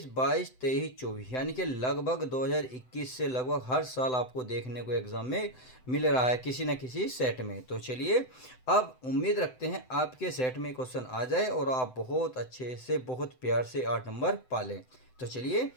22, 23, 24, यानी कि लगभग 2021 से लगभग हर साल आपको देखने को एग्जाम में मिल रहा है किसी न किसी सेट में। तो चलिए, अब उम्मीद रखते हैं आपके सेट में क्वेश्चन आ जाए और आप बहुत अच्छे से, बहुत प्यार से 8 नंबर पालें। तो चलिए,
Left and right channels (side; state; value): right; late; 7.9 ms